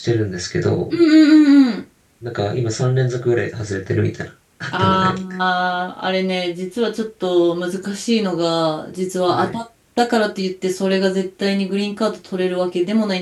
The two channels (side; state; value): both; identical; correlation 1.00